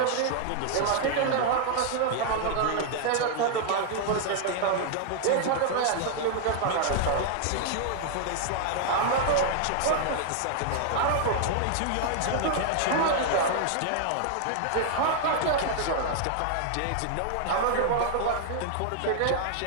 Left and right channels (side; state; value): both; different; correlation 0.00